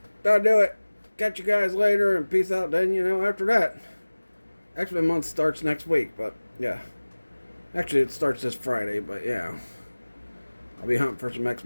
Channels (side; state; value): both; inverted; correlation -1.00